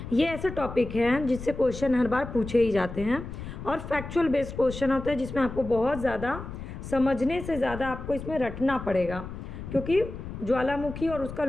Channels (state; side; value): noise; left; rumble, 10 dB below the sound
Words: ये ऐसे टॉपिक हैं जिससे क्वेश्चन हर बार पूछे ही जाते हैं और फैक्चुअल बेस्ड क्वेश्चन होते हैं जिसमें आपको बहुत ज़्यादा समझने से ज़्यादा आपको इसमें रटना पड़ेगा, क्योंकि ज्वालामुखी और उसका